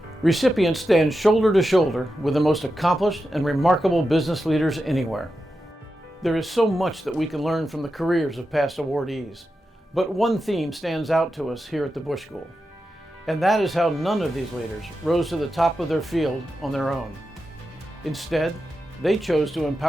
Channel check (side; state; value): both; normal; correlation 0.90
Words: Recipients stand shoulder to shoulder with the most accomplished and remarkable business leaders anywhere. There is so much that we can learn from the careers of past awardees, but one theme stands out to us here at the Bush School, and that is how none of these leaders rose to the top of their field on their own. Instead, they chose to